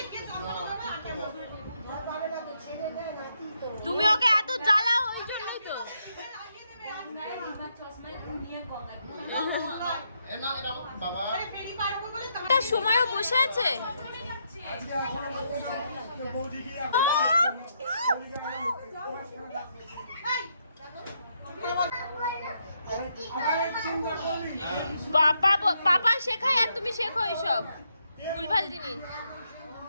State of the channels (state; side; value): inverted; both; correlation -0.78